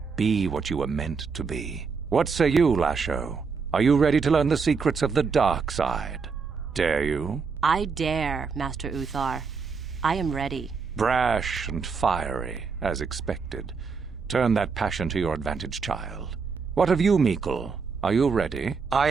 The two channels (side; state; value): left; quieter; 5.2 dB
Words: Be what you were meant to be. What say you, Lasho? Are you ready to learn the secrets of the dark side? Dare you? I dare, Master Uthar. I am ready. Brash and fiery, as expected. Turn that passion to your advantage, child. What of you, Meekle? Are you ready? I